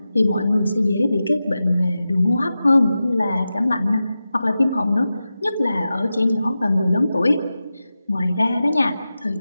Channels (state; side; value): inverted; both; correlation -0.92